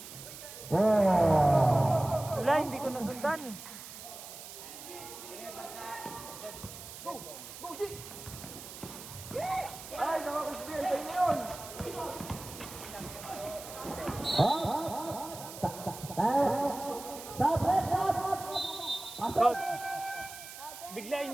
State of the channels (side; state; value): right; noise; hiss, 13 dB below the sound